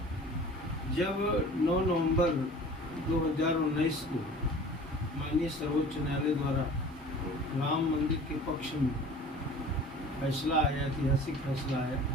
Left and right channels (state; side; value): normal; both; correlation 0.44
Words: जब 9 नवंबर 2019 को माननीय सर्वोच्च न्यायालय द्वारा राम मंदिर के पक्ष में फैसला आया, ऐतिहासिक फैसला आया,